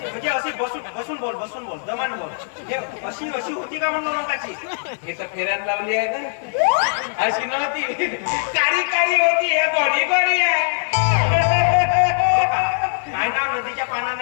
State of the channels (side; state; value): right; silent; 64 dB below the other